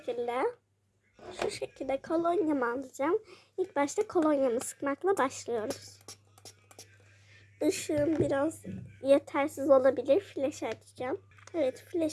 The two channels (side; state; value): both; identical; correlation 1.00